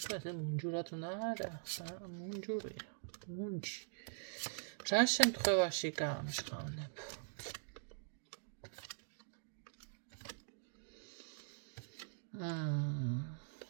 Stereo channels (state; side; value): silent; left; digital silence